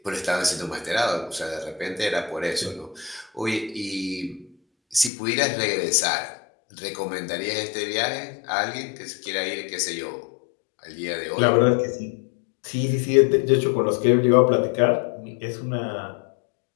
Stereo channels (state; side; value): drops out; right; at 5.1 s